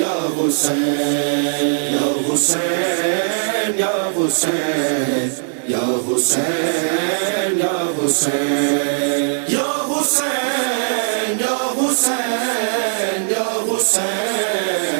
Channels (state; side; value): silent; left; digital silence